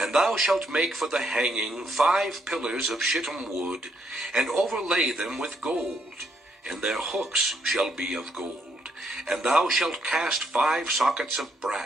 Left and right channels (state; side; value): normal; both; correlation 0.73